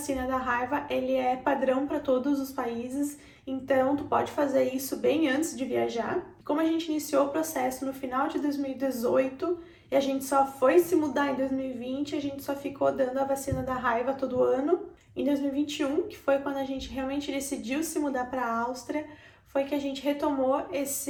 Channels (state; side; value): identical; both; correlation 1.00